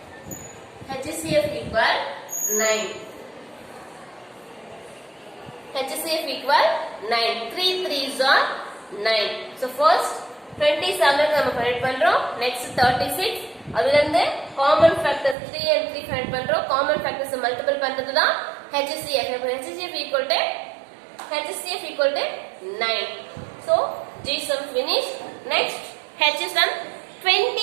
HCF equal 9. HCF equal 9. 3 3s are 9. So first 27 நம்ம ஃபைண்ட் பண்றோம். நெக்ஸ்ட் 36 அதுல இருந்து காமன் ஃபேக்டர்ஸ் 3 and 3 ஃபைண்ட் பண்றோம். காமன் ஃபேக்டர்ஸ் மல்டிபிள் பண்றது தான் HCF. HCF equal to 9. So G sum finished. Next H sum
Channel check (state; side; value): drops out; left; at 15.4 s